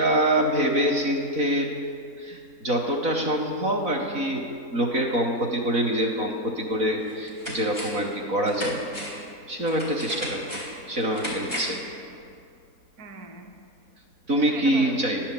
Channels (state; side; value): late; left; 4.0 ms